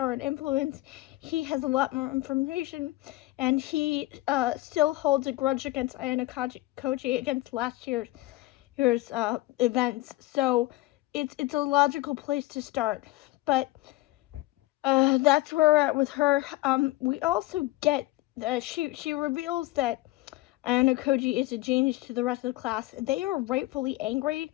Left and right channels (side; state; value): right; quieter; 18.7 dB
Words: and influence. He has a lot more information, and he still holds a grudge against Ayano Koji against last year's events. So it's a logical place to start. But that's where we're at with her. We also get she reveals that Ayano Koji is a genius to the rest of the class. They are rightfully angry